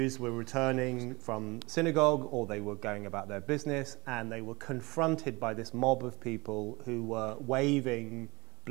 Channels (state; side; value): quieter; left; 24.1 dB